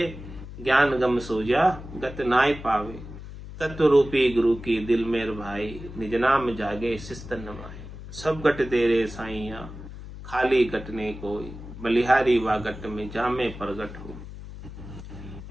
ज्ञान गम सोजा गत नाय पावे, तत्व रूपी गुरु की दिल मेर भाई, निज नाम जागे शिस्तन नमाए। सब गट तेरे साइया खाली गटने कोई, बलिहारी वा गट में जामे प्रगट हो।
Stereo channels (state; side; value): noise; left; hum, 12 dB below the sound